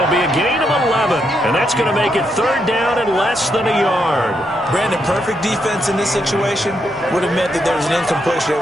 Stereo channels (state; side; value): normal; both; correlation 0.79